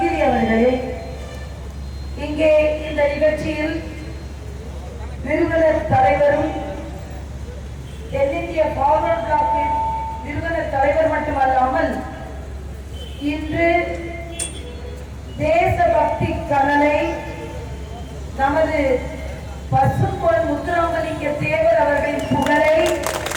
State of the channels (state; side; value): identical; both; correlation 1.00